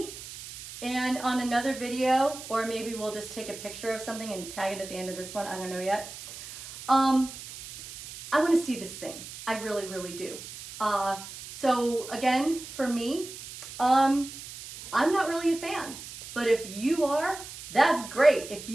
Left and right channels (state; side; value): noise; right; hiss, 13 dB below the sound